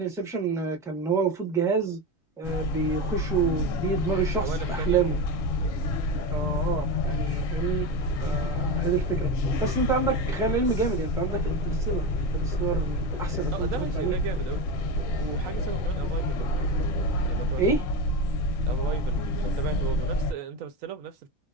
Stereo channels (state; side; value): normal; both; correlation 0.19